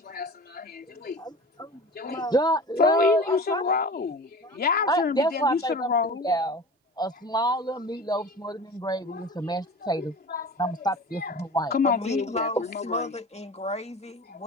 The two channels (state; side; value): normal; both; correlation 0.36